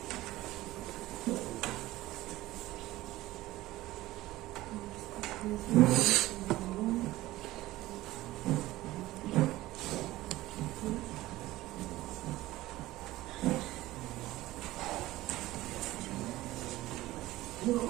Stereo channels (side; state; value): left; quieter; 17.1 dB